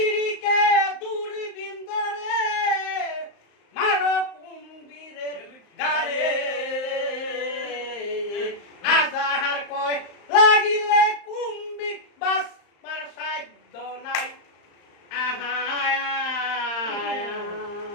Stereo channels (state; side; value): late; right; 35 ms